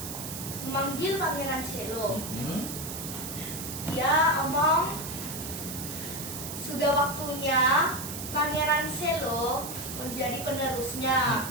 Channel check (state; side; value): noise; right; hiss, 8 dB below the sound